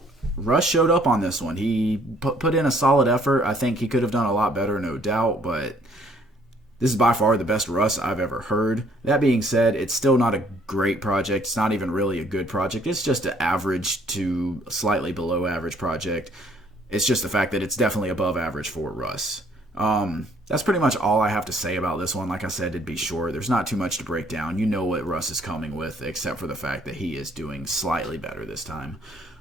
Russ showed up on this one. He put in a solid effort. I think he could have done a lot better, no doubt, but this is by far the best Russ I've ever heard. That being said, it's still not a great project. It's not even really a good project. It's just an average to slightly below average project. It's just the fact that it's definitely above average for Russ. that's pretty much all I have to say about this one. Like I said, it'd be short. There's not too much to break down. You know what Russ is coming with, except for the fact that he is doing slightly better this time.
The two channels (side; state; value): both; normal; correlation 0.62